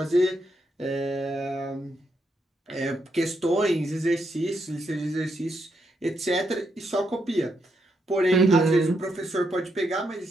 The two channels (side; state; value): both; normal; correlation 0.79